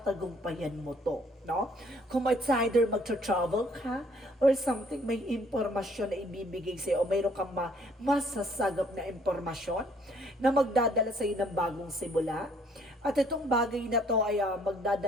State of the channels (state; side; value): normal; both; correlation 0.62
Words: mo to, no? Kung it's either magtra-travel ka or something, may impormasyon na ibibigay sa'yo o mayroon kang masasagap na impormasyon na magdadala sa'yo ng bagong simula. At itong bagay na to ay